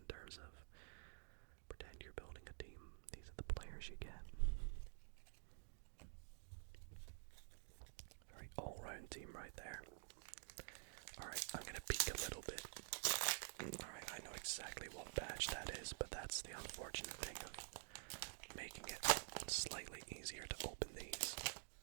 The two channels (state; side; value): silent; left; digital silence